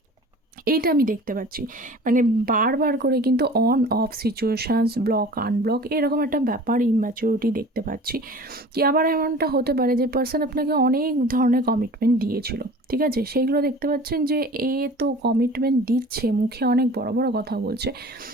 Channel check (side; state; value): both; normal; correlation 0.42